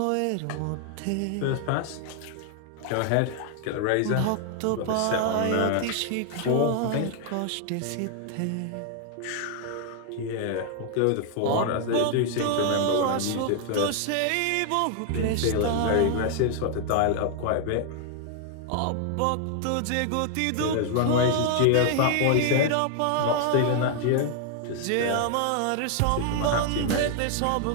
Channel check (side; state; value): both; different; correlation 0.00